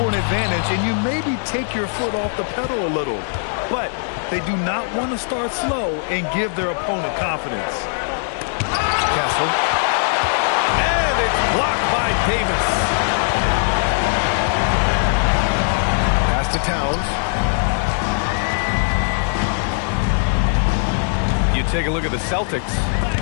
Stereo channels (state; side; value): silent; right; digital silence